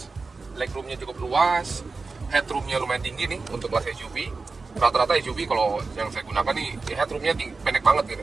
legroomnya cukup luas, headroomnya lumayan tinggi nih untuk kelas SUV. Rata-rata SUV kalau yang saya gunakan nih headroomnya pendek banget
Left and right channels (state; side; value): quieter; left; 4.1 dB